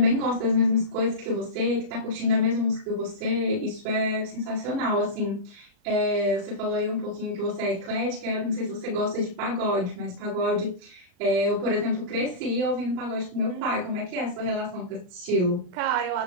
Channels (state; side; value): late; left; 39 ms